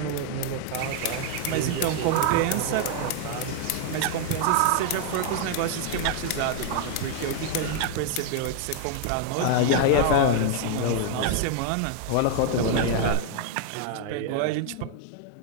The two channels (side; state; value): both; different; correlation 0.00